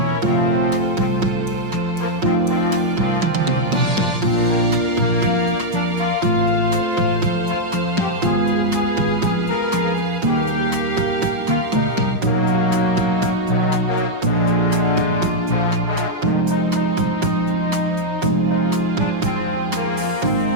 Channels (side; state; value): left; late; 5.5 ms